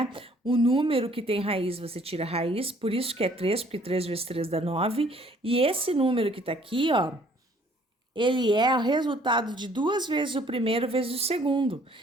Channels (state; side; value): normal; both; correlation 0.59